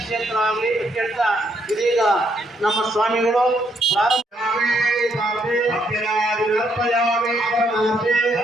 ಆಗಲಿ ಕೇಳ್ತಾ ಇದೀಗ ನಮ್ಮ ಸ್ವಾಮಿಗಳು ಪ್ರಾರಂಭ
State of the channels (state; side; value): normal; both; correlation 0.73